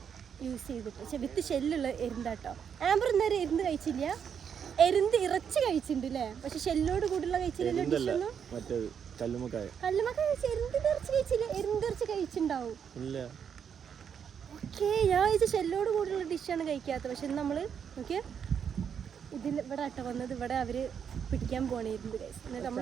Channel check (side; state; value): left; quieter; 7.6 dB